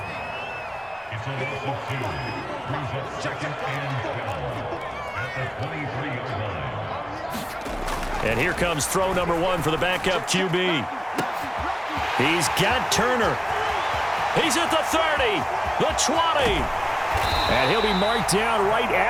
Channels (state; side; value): identical; both; correlation 1.00